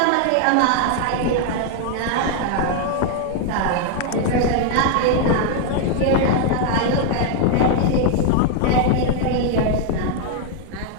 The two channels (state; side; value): different; both; correlation 0.00